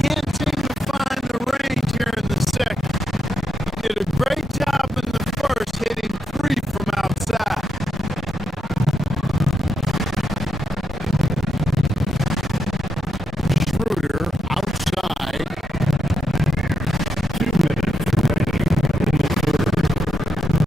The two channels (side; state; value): both; normal; correlation 0.83